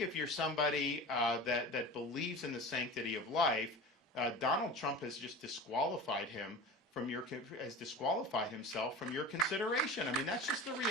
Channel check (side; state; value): both; normal; correlation 0.33